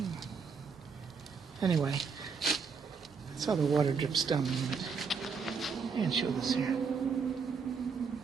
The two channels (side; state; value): left; quieter; 5.5 dB